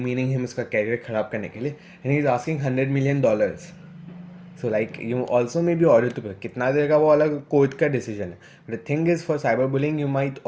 him, इसका career ख़राब करने के लिए, and he is asking $100 million. So like you also may be ordered to pay. कितना देगा वो अलग कोर्ट का डिसीजन है. But the thing is, for cyberbullying you might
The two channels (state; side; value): identical; both; correlation 1.00